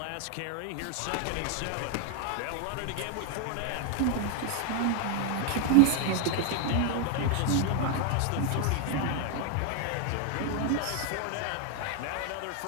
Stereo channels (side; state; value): both; different; correlation 0.01